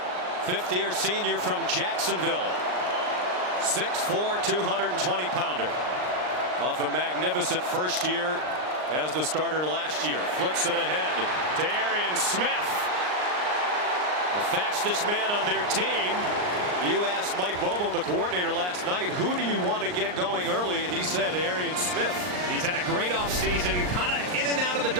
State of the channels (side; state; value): left; late; 39 ms